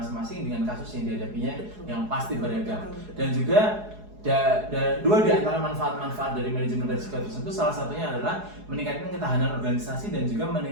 dengan kasus yang dihadapinya yang pasti beragam. Dan juga dua di antara manfaat-manfaat dari manajemen risiko tersebut, salah satunya adalah meningkatkan ketahanan organisasi dan juga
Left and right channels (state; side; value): late; left; 4.8 ms